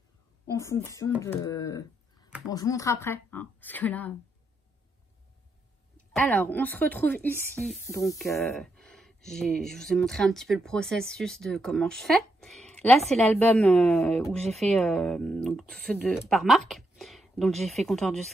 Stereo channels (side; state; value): both; normal; correlation 0.81